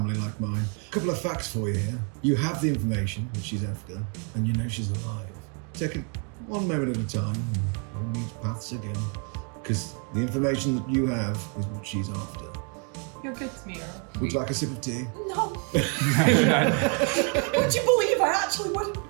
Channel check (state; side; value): quieter; left; 38.9 dB